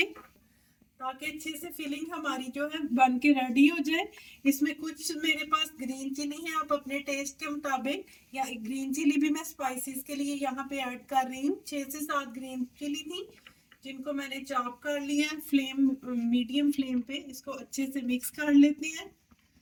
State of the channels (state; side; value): identical; both; correlation 1.00